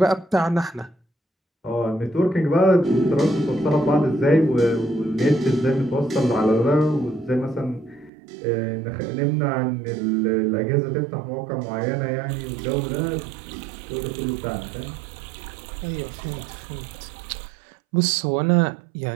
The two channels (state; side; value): drops out; left; at 8.1 s